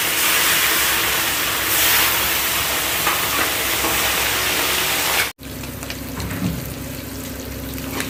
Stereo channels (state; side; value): identical; both; correlation 1.00